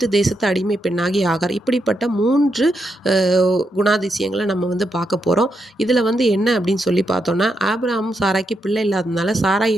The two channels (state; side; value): normal; both; correlation 0.82